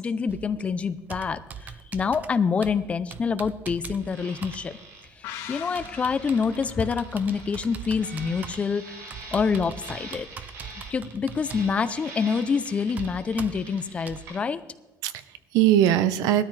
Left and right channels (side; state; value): both; normal; correlation 0.58